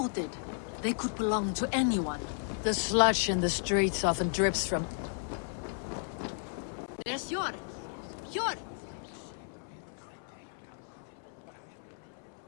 They could belong to anyone. The sludge in the streets often drips from... There's Yor! Yor!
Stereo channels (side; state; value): right; silent; 55 dB below the other